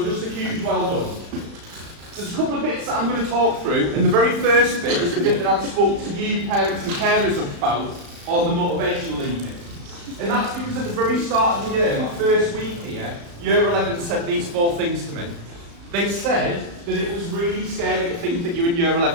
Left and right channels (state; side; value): late; left; 35 ms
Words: just a huge well done. There's a couple of bits that I'm going to talk through, and the very first bit is the bit that I spoke to you parents and carers about on the motivational evening. And that's because at the very start of the year, my first week here, Year 11 said these 4 things to me. They said that it was really scary to think that you're in Year